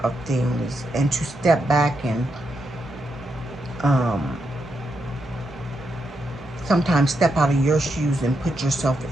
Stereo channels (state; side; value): normal; both; correlation 0.83